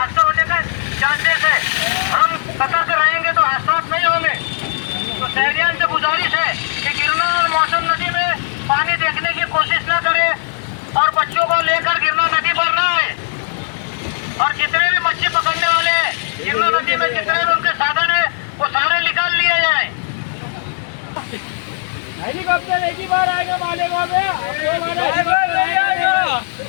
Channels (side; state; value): right; silent; 68 dB below the other